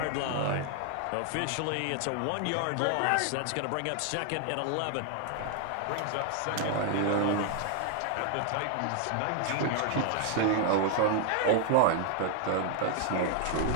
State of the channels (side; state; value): both; different; correlation 0.00